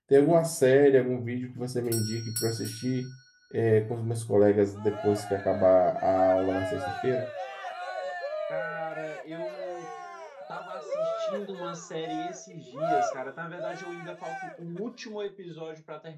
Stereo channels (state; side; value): identical; both; correlation 1.00